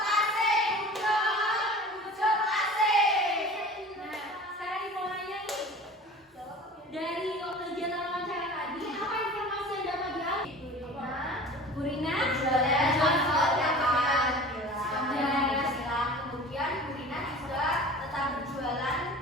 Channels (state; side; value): normal; both; correlation 0.40